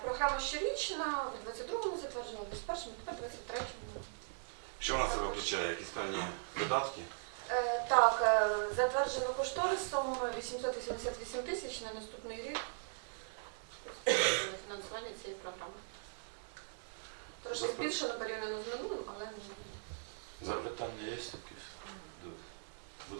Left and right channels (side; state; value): left; silent; digital silence